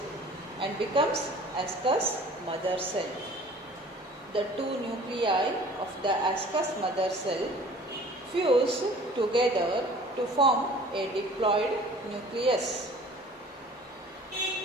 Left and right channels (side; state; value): both; normal; correlation 0.48